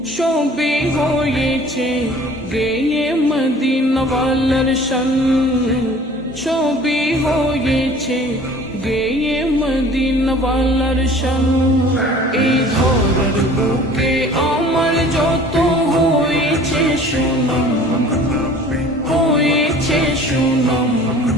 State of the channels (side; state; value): both; normal; correlation 0.48